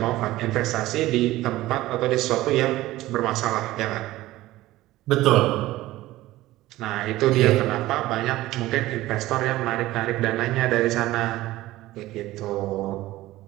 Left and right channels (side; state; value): left; quieter; 16.8 dB